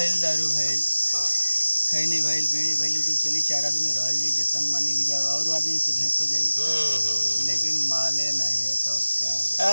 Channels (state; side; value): inverted; both; correlation -1.00